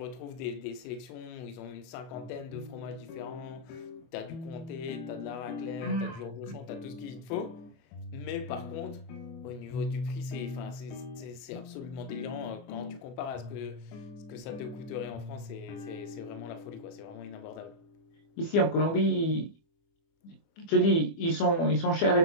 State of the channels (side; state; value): right; late; 24 ms